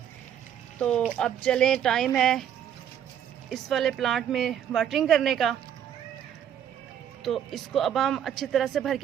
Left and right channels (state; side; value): quieter; left; 9.5 dB